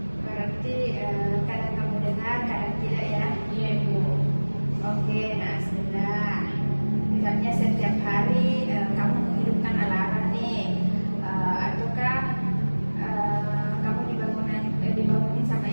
berarti kadang kamu dengar, kadang tidak ya. Iya Bu. Oke, nah Asmila, misalnya setiap hari kamu menghidupkan alarm nih, ataukah kamu dibangunin sama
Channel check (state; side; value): inverted; both; correlation -1.00